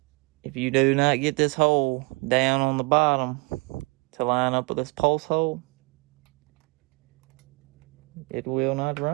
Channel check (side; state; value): left; quieter; 28.4 dB